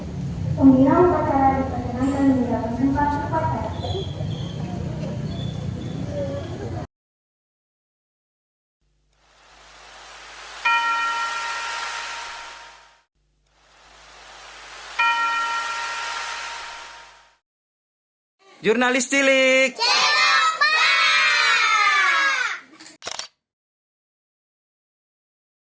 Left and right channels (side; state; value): both; identical; correlation 1.00